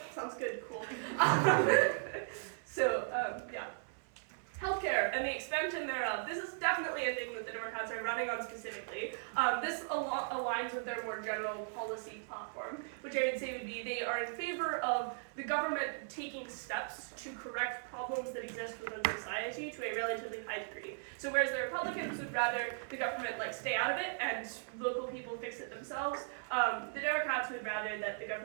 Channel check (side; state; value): left; silent; 53 dB below the other